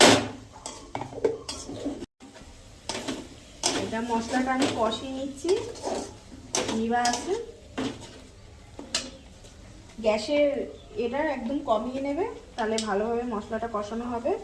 এটা মশলাটা আমি কষিয়ে নিচ্ছি। নিবা আছে গ্যাসের এটা একদম কমিয়ে নেবে, তাহলে ভালোভাবে মশলাটা কষানো হবে।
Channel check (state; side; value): identical; both; correlation 1.00